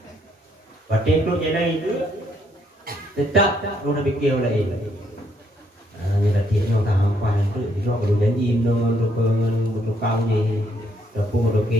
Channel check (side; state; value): both; normal; correlation 0.71